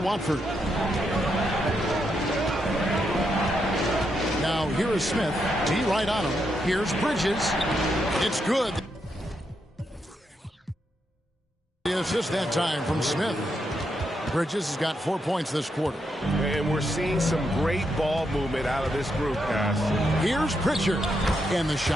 Now here is Smith. T right on him. Here's Bridges. It's good. The assist that time from Smith. Bridges has got 4 points this quarter. And we're seeing some great ball movement out of this group, guys. Here's Pritchard. And the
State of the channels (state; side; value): normal; both; correlation 0.81